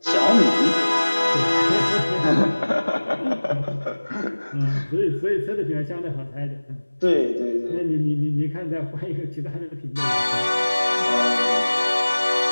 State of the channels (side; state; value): both; inverted; correlation -1.00